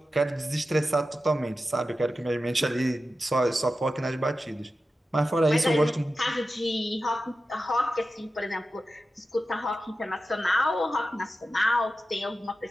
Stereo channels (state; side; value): normal; both; correlation 0.93